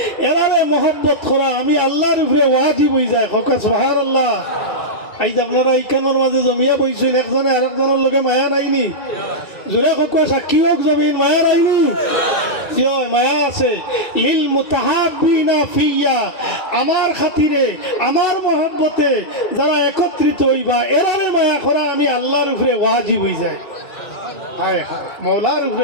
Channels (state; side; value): late; right; 2.7 ms